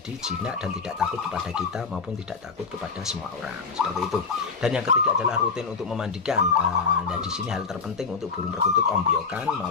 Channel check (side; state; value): right; quieter; 4.9 dB